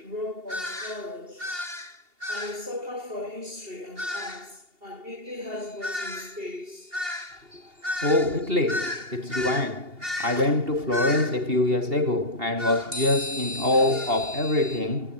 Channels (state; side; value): late; left; 2.8 ms